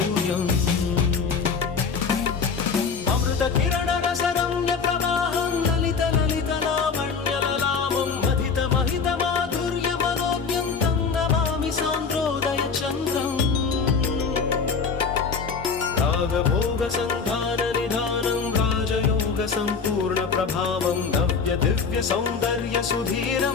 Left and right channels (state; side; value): quieter; right; 5.4 dB